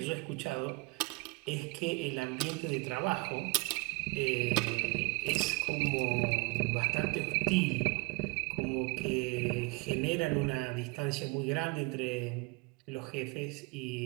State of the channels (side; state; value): left; quieter; 26.7 dB